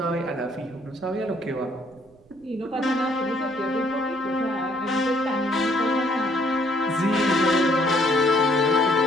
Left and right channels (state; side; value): noise; right; rumble, 28 dB below the sound